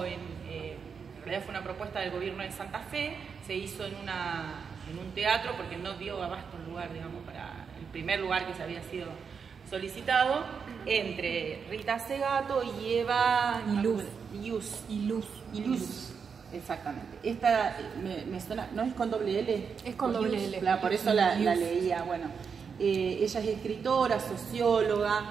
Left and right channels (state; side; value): quieter; left; 6.1 dB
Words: en realidad fue una propuesta del gobierno de Santa Fe, se hizo en un teatro porque no dio abasto el lugar, digamos, para el primer lugar que se había sido solicitado, entre Rita Segato y Eva Iluz. Exactamente. Esta me suena, no es con doble L. Es con doble L. Por eso la leía. Bueno, ella es escritora,